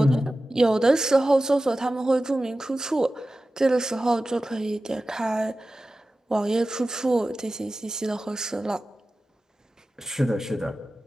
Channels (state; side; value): normal; both; correlation 0.95